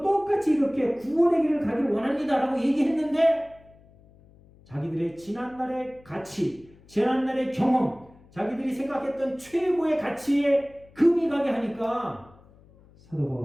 똑같이 이렇게 구원의 길을 가길 원합니다 라고 얘기했는데 자기들의 지난날의 가치, 지난날의 경험, 자기들이 생각했던 최고의 가치에 금이 가게 하니까 사도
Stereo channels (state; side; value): noise; left; hum, 26 dB below the sound